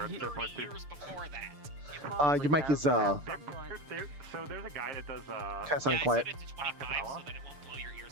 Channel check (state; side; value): late; left; 6.8 ms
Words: 30 years before that. Your mic is So there's a guy that does kind of sounding quiet. I set it to 25 so that it won't blow your